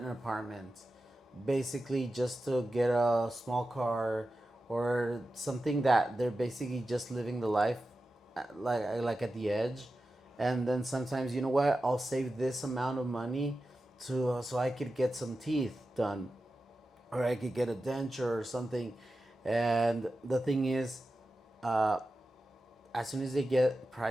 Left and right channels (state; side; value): normal; both; correlation 0.92